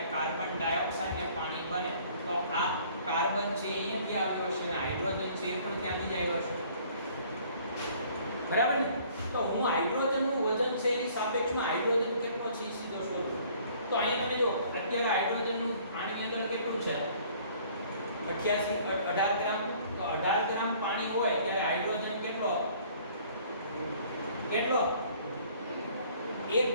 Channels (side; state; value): both; inverted; correlation -0.56